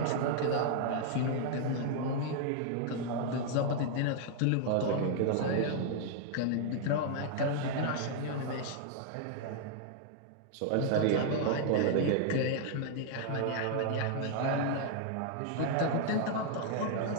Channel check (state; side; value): different; both; correlation 0.00